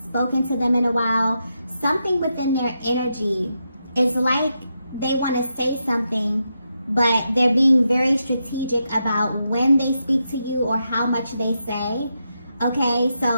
spoken to them in a while. Something within their energy is like they want to say something, but they're being very strategic about when they speak to you or how much they say. Okay,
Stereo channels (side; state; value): both; inverted; correlation -0.84